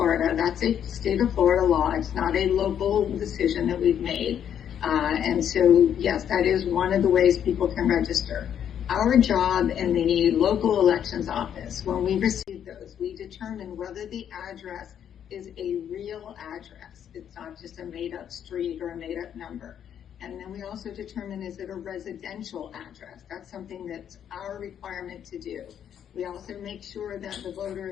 that's a state of Florida law. It's not a local decision that we've made. And so, yes, that is one of the ways people can register. Our job in the local elections office, when we receive those, we determine whether the address is a real address. It's not just a made-up street or a made-up number. And then we also determine, is it a residential address? That's something that's our requirement to do. We also make sure that the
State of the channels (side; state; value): right; quieter; 9.2 dB